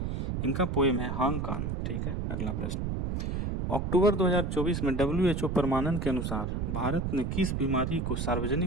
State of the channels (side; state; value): right; noise; rumble, 1 dB below the sound